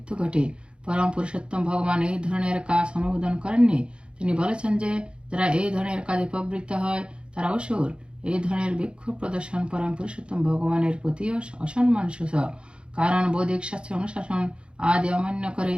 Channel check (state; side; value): late; left; 0.055 ms